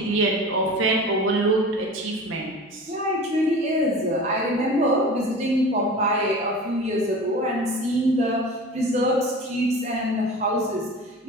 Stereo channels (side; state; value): both; normal; correlation 0.36